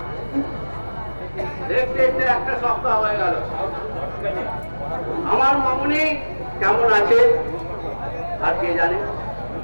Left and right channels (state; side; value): inverted; both; correlation -1.00